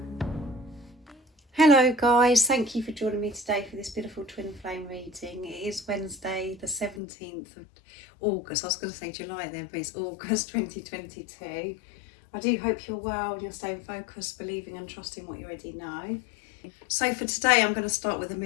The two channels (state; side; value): drops out; right; at 7.0 s